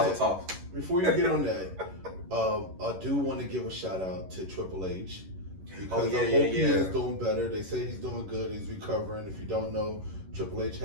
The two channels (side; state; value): left; late; 11 ms